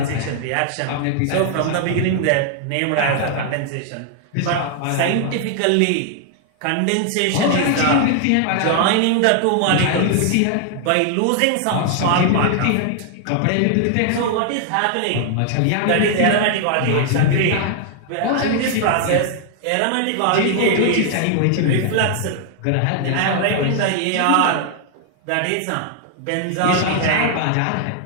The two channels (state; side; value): different; both; correlation 0.00